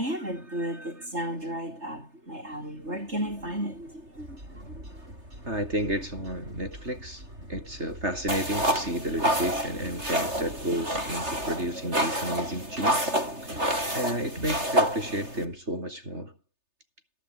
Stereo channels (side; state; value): left; late; 3.3 ms